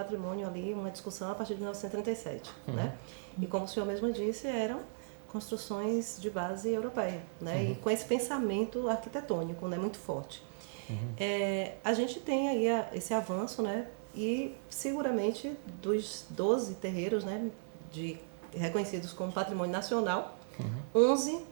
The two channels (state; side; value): silent; left; 54 dB below the other